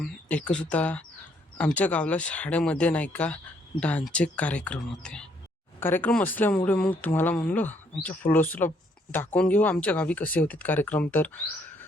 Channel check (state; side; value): normal; both; correlation 0.69